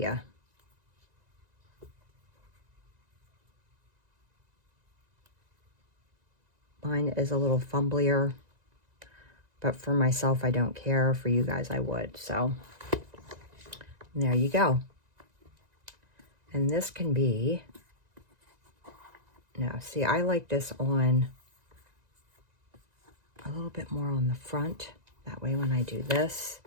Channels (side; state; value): left; late; 1.9 ms